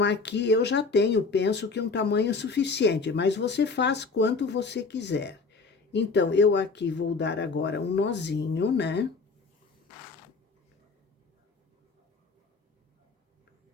aqui eu já tenho, penso que um tamanho suficiente, mas você faz quanto você quiser. Então, eu aqui vou dar agora um nozinho, né?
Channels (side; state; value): right; quieter; 4.3 dB